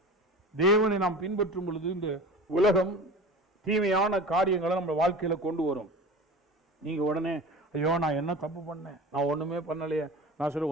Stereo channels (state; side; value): normal; both; correlation 0.36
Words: தேவனை நாம் பின்பற்றும் பொழுது இந்த உலகம் தீமையான காரியங்களை நம்ம வாழ்க்கையில் கொண்டு வரும். நீங்கள் உடனே, ஐயோ நான் என்ன தப்பு பண்ணேன், நான் ஒன்றுமே பண்ணலையே, நான் சொல்ல